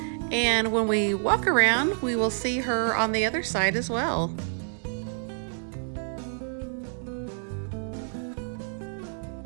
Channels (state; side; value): silent; left; digital silence